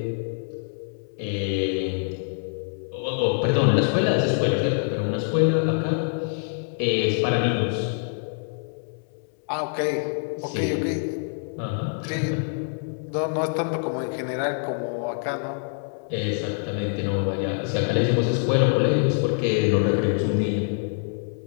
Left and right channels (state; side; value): silent; right; 62 dB below the other